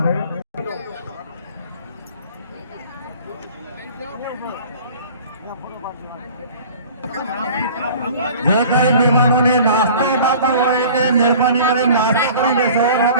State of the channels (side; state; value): both; inverted; correlation -0.45